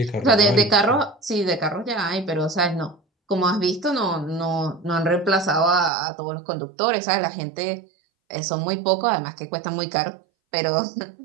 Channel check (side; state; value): left; drops out; at 5.9 s